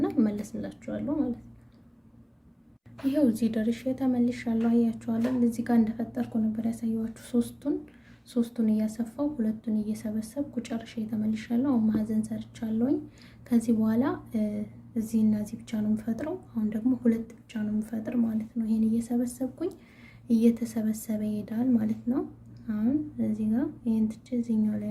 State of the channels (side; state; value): both; identical; correlation 1.00